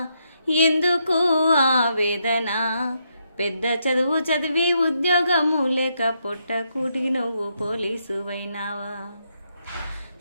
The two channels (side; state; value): both; inverted; correlation -0.79